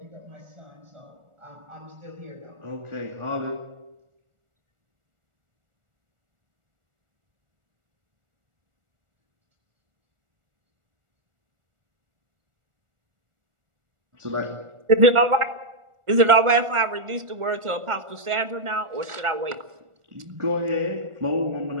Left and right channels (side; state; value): left; late; 1.4 ms